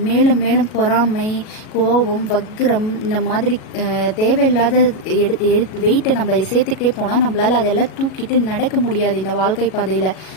மேலும் மேலும் பொறாமை, கோபம், வக்ரம் இந்த மாதிரி தேவையில்லாத வெயிட்டை நம்ம சேர்த்துக்கிட்டே போனால் நம்மளால் அதெல்லாம் தூக்கிட்டு நடக்க முடியாது இந்த வாழ்க்கை பாதையில்.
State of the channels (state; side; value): late; right; 37 ms